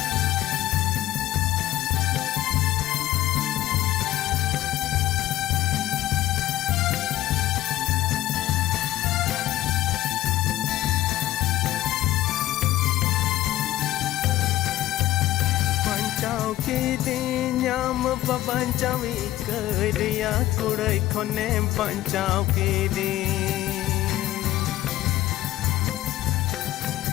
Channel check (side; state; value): right; quieter; 15.2 dB